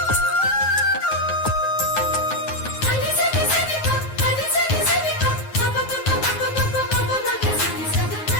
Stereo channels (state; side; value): late; right; 9.4 ms